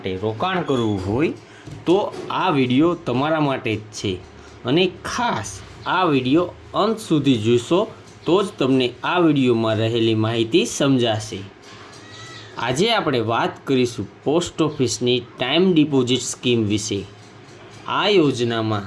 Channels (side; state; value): both; identical; correlation 1.00